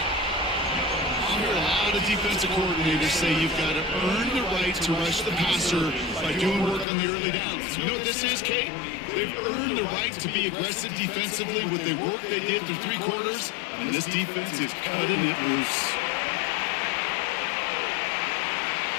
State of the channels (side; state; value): right; drops out; at 6.9 s